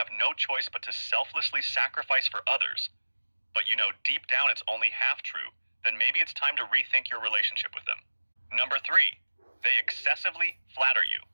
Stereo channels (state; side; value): inverted; both; correlation -1.00